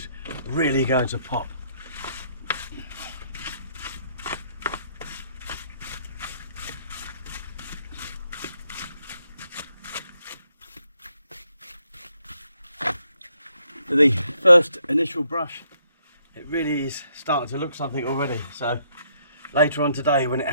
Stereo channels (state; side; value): inverted; both; correlation -0.71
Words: really going to pop. For the first initial brush, it really is starting to look something already. So later on today, when it